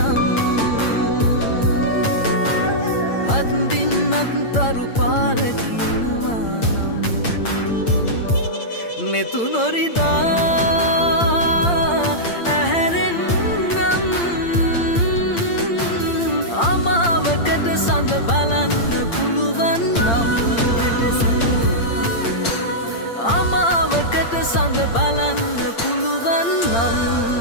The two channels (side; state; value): right; late; 8.7 ms